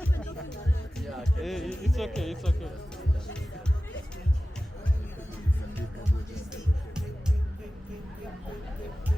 It's okay, it's okay.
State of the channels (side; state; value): both; normal; correlation 0.96